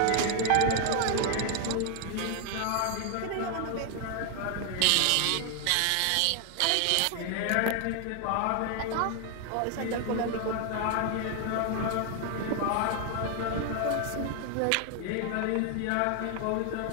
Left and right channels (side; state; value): both; different; correlation 0.00